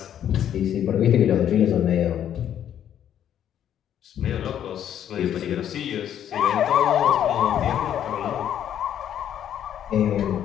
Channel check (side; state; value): right; quieter; 10.1 dB